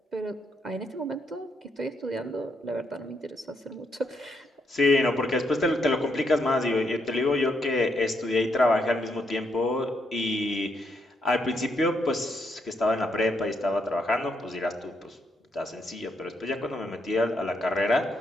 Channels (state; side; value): normal; both; correlation 0.77